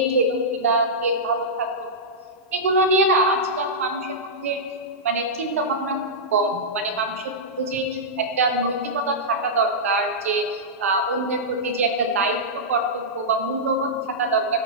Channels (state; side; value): normal; both; correlation -0.12